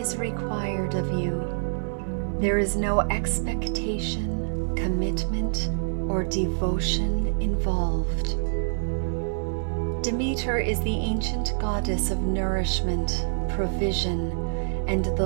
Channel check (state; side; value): silent; left; 61 dB below the other